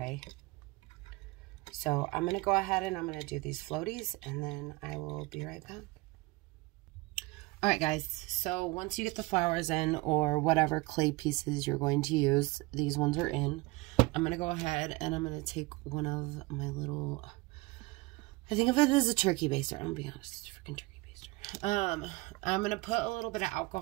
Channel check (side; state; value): left; quieter; 22.9 dB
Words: So I'm going to go ahead and I'm going to do these floaties, and then I will be right back. Alright guys, so once you get the flowers in, or whatever clay pieces you're going to use, these ones are in. I'm going to go ahead and I'm going to take one of my little, I think of it as a turkey baster. I'm going to be honest, it's a freaking turkey baster. I'm going to put a little bit of